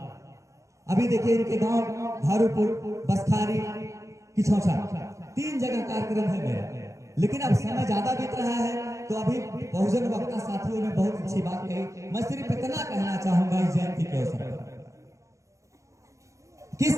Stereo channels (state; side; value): late; left; 0.15 ms